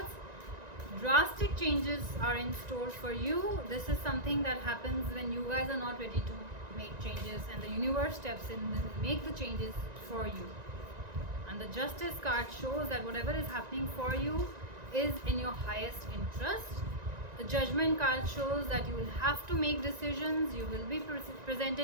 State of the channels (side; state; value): left; late; 1.9 ms